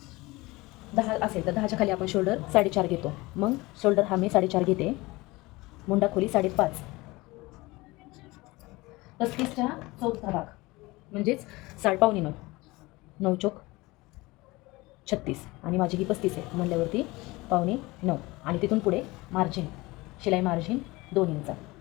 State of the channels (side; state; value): right; quieter; 21.8 dB